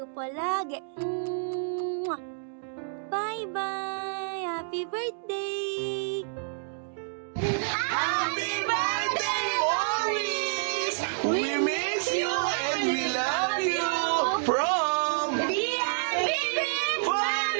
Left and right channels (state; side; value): silent; left; digital silence